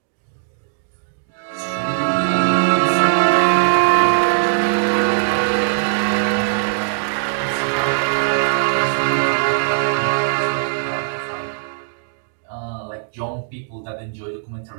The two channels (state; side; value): silent; left; digital silence